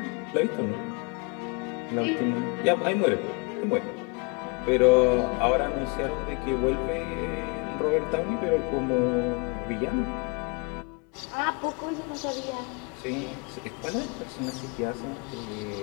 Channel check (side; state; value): right; quieter; 30.4 dB